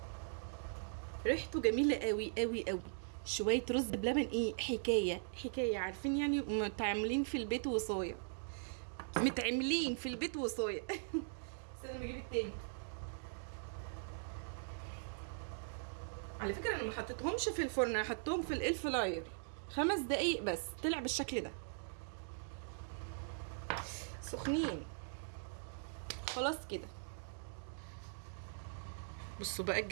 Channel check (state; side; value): silent; left; digital silence